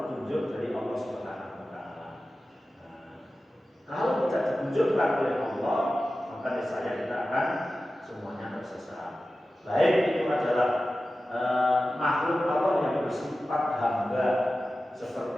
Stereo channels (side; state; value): both; normal; correlation 0.94